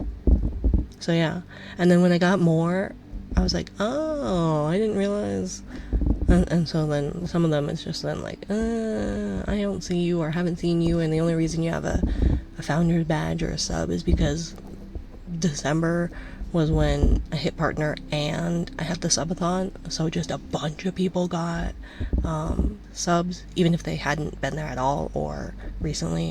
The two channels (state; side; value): identical; both; correlation 1.00